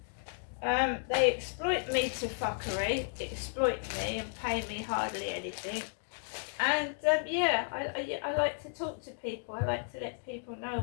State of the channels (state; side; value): silent; right; digital silence